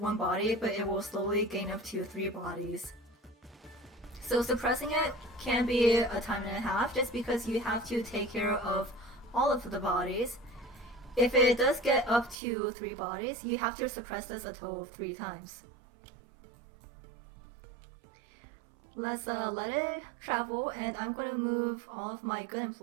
body, but it will slowly gain up to 3 bodies. So suppressing it can be a time and a half just because you have to take care of all of the bodies. If it does get up to 3 bodies, you have to suppress this a total of 3 times. Let's let it travel, and I'm going to move all of my good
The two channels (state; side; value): drops out; left; at 12.4 s